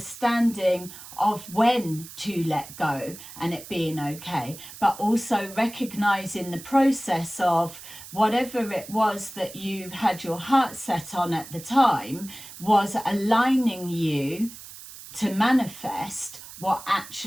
of when to let go and it being okay, but also recognizing the process of whatever it was that you had your heart set on at the time was aligning you to manifest what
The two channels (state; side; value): noise; right; hiss, 15 dB below the sound